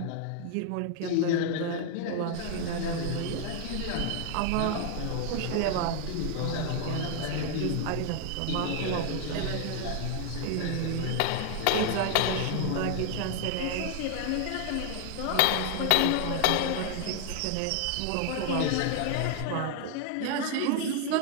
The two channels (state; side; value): different; both; correlation 0.00